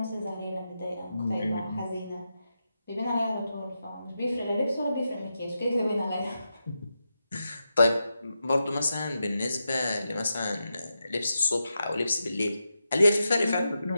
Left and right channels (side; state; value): both; inverted; correlation -0.87